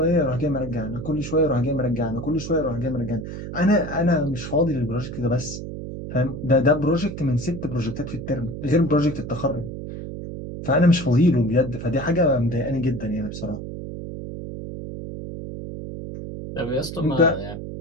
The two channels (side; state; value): right; noise; hum, 8 dB below the sound